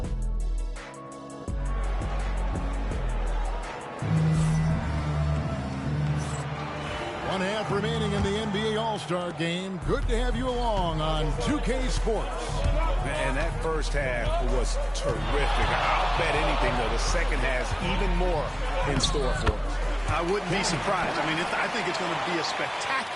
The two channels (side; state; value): both; identical; correlation 1.00